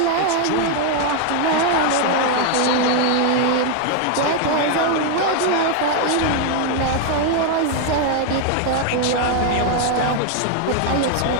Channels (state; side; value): different; both; correlation 0.01